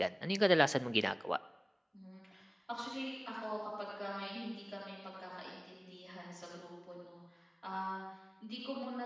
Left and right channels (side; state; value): both; identical; correlation 1.00